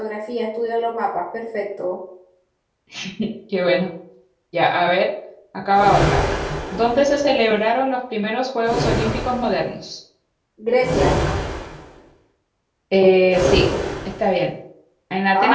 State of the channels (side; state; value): both; identical; correlation 1.00